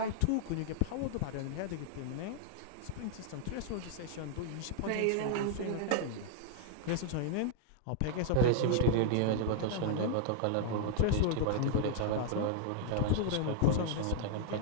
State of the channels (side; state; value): both; different; correlation -0.01